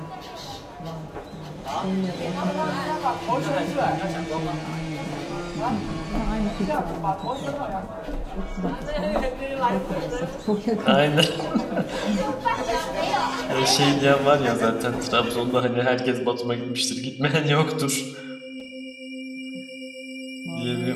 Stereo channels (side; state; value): both; identical; correlation 1.00